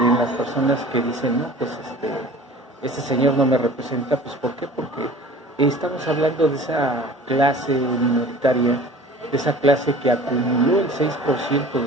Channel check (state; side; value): normal; both; correlation 0.43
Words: las personas que dicen, no, pues este señor no me representa, pues ¿por qué? Porque estamos hablando de esa clase minoritaria, de esa clase que acumuló el 6%